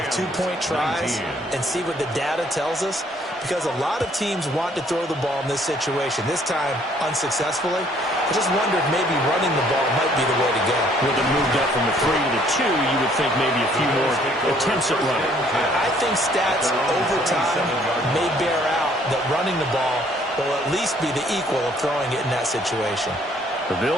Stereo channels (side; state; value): both; normal; correlation 0.62